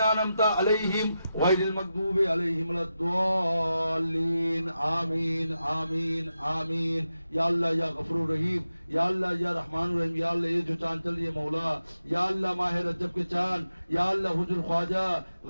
عليهم غير المغضوب عليهم ولا الضالين. آمین آمین آمین. یا اللہ یا غفور رحیم یا اللہ یا رحمان الرحیم. یا اللہ یہ جو چاند چل رہی ہے مولا یا اللہ ماہ رجب کے چاند یا اللہ حجر خواجہ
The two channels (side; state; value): both; inverted; correlation -0.89